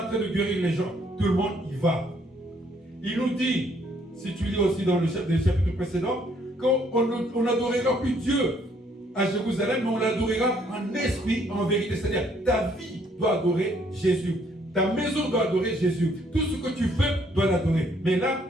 train de guérir les gens. Tout le monde y va. Il nous dit, si tu lis aussi dans le chapitre précédent, qu'on n'adorera plus Dieu à Jérusalem, mais on l'adorera en esprit, en vérité. C'est-à-dire, ta vie doit adorer Jésus. Ta maison doit adorer Jésus. Tout ce que tu fais doit l'adorer. Mais là,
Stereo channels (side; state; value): both; normal; correlation 0.66